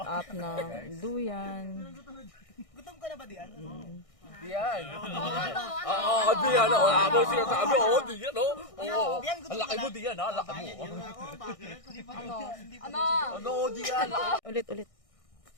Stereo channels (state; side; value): late; right; 1.6 ms